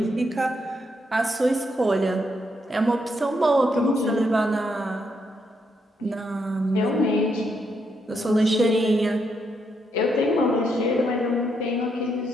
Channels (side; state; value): both; normal; correlation 0.78